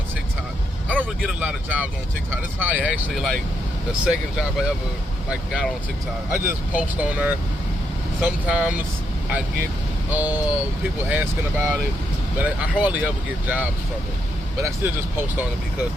TikTok. I don't really get a lot of jobs on TikTok. This is probably actually like the second job I ever got on TikTok. I just post on there. Sometimes I get people asking about it, but I hardly ever get jobs from it. But I still just post on it because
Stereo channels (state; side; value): normal; both; correlation 0.78